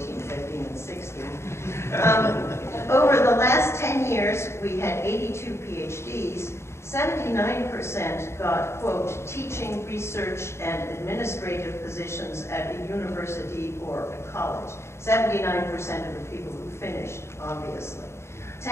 15, and 16. Over the last 10 years, we had 82 PhDs. 79% got, quote, teaching, research, and administrative positions at a university or a college. 79% of the people who finished, obviously.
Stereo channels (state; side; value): late; right; 0.13 ms